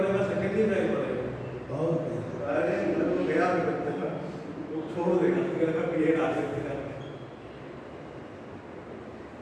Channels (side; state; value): both; identical; correlation 1.00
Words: सेकंड ईयर जाके पढ़ेगा, और अरे मतलब गया भी बच्चा वो छोड़ देगा, फिर का पीरियड आ सकते हैं।